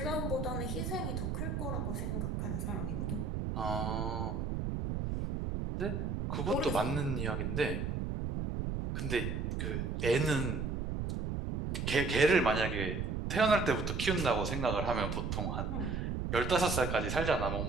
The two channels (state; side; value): noise; right; rumble, 2 dB below the sound